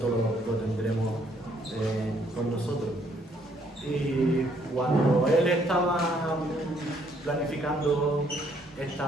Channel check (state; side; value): normal; both; correlation 0.67